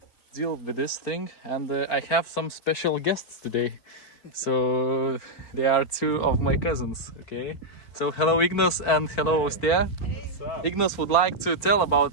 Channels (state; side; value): late; right; 4.5 ms